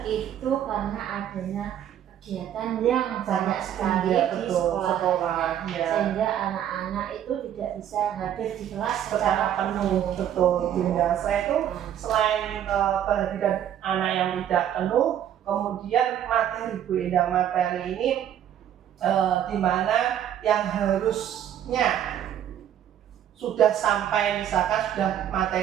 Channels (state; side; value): quieter; left; 10.4 dB